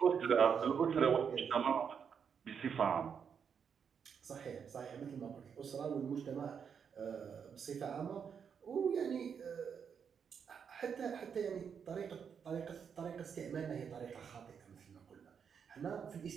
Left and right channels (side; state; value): left; quieter; 7.0 dB